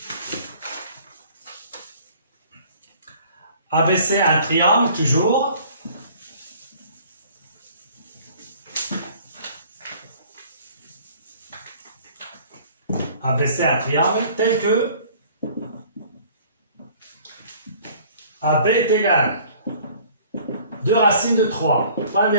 ABC, un triangle, toujours. ABC, un triangle, tel que AB est égal 2 racines de 3, point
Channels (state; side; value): inverted; both; correlation -0.52